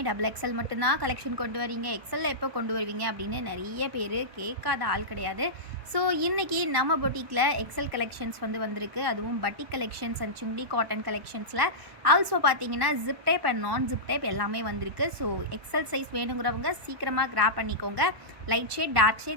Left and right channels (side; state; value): left; late; 1.1 ms